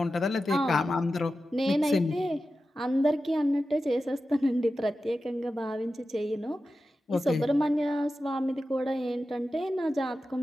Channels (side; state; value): both; normal; correlation 0.93